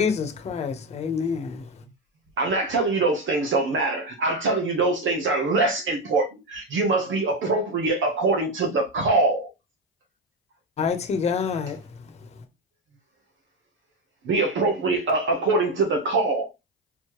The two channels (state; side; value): normal; both; correlation 0.10